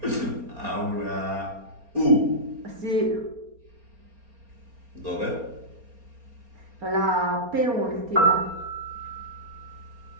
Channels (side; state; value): left; late; 4.3 ms